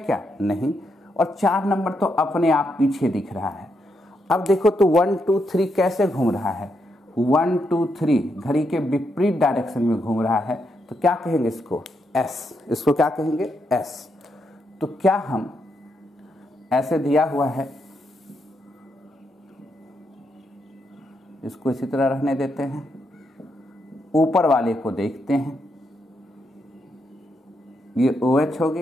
नहीं। और 4 नंबर तो अपने आप पीछे दिख रहा है। अब देखो तो 1 2 3 कैसे घूम रहा है, 1 2 3 घड़ी के विपरीत डायरेक्शन में घूम रहा है, तो क्या कहेंगे इसको, S। इसको क्या कहेंगे, S। तो क्या हम ऐसे दिया हुआ है, इसको इसी तरह रहने देते हैं, ऊपर वाले को देखते हैं, ये OH हो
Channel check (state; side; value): normal; both; correlation 0.80